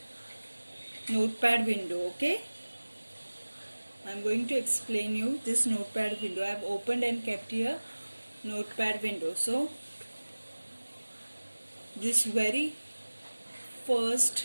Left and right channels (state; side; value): inverted; both; correlation -1.00